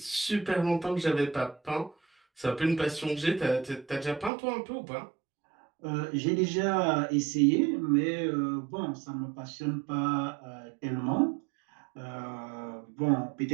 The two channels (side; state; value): left; drops out; at 4.3 s